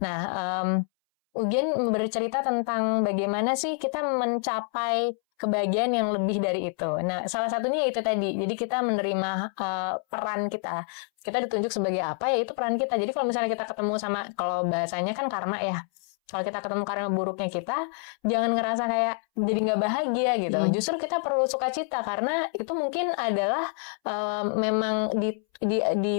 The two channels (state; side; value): silent; right; 60 dB below the other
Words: Ugen bercerita tentang bagaimana sih kita mencapai kebahagiaan yang lebih dari itu. Nah, salah satunya itu tadi. Jadi kita menerima peran kita. Kita ditunjuk sebagai apa, ya itu peran kita. Jadi kalau misalnya kita ketemu sama, kalau bahasanya kan karma ya. Kalau kita ketemu karma buruknya kita, jangan ngerasa kayak jadi nggak bahagia gitu. Justru kita perlu sukacita karena itu mungkin adalah memang